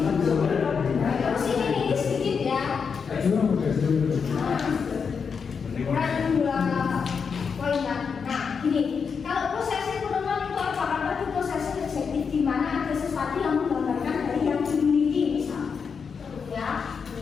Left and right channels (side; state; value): right; quieter; 6.0 dB